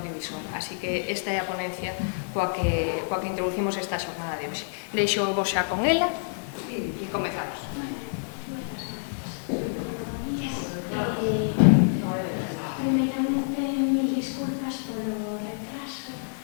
Así que esta é a ponencia coa que introducimos esta xornada de hoxe. Deixo vos xa con ela e comezamos. Primeiramente, mil disculpas polo retraso.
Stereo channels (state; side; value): silent; right; digital silence